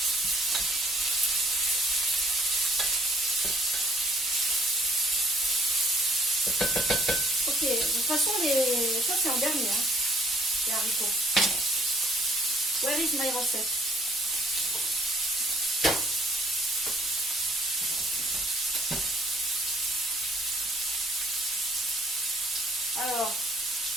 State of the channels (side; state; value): both; normal; correlation 0.61